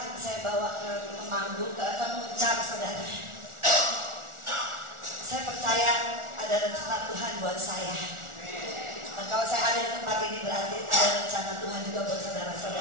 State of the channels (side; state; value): left; late; 1.4 ms